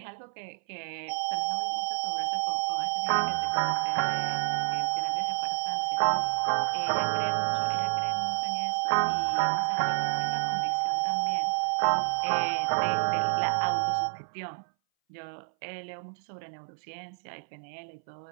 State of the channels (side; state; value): left; silent; 59 dB below the other